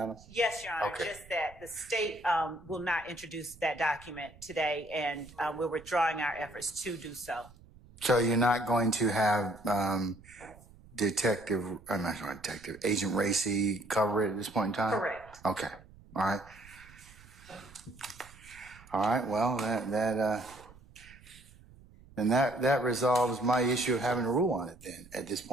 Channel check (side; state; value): right; noise; rumble, 23 dB below the sound